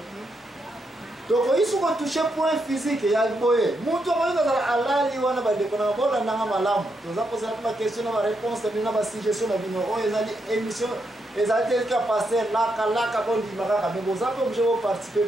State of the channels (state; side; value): normal; both; correlation 0.81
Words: tokoki soki otouche point physique ya boye mutu okoki kozala alali wana bandeko na bolandanga malamu toza kozala mpe baquestion na baréponse na bino na basuggestion na bino oyo ezali émission ezali te ka paster laka bondima kaka me boza mpe oblige boparticipe